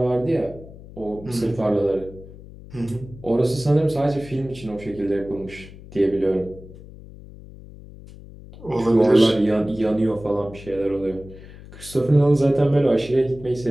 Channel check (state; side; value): noise; left; hum, 18 dB below the sound